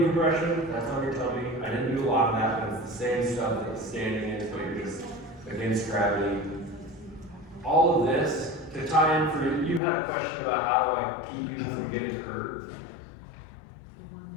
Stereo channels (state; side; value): drops out; right; at 9.8 s